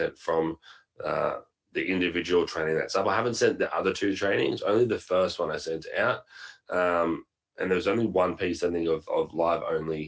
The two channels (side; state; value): both; identical; correlation 1.00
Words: from the individual training that's up. I haven't sent the other two trainings, only the first one I sent out. And there was only one piece, I think, of live